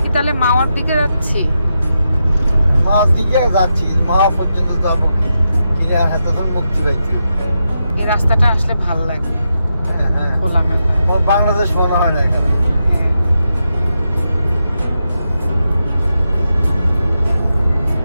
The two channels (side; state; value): both; inverted; correlation -0.86